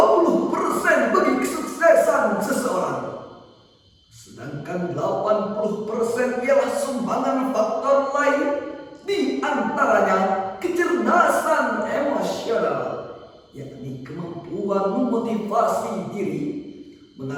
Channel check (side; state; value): both; identical; correlation 1.00